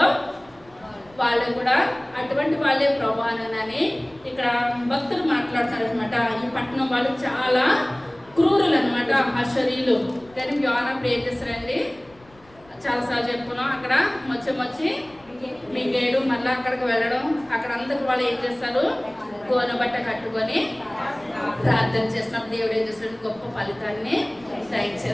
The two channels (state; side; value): noise; left; rumble, 28 dB below the sound